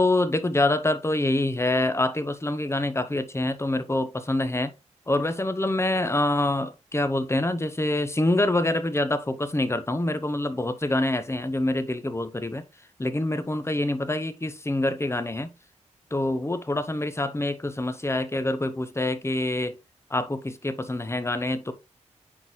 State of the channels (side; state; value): both; normal; correlation 0.79